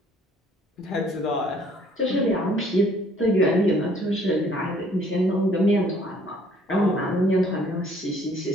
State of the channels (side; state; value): both; normal; correlation 0.60